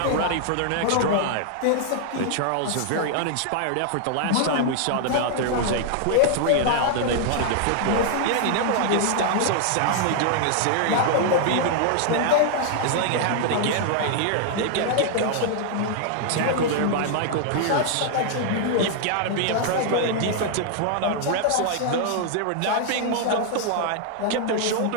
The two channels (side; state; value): both; different; correlation -0.01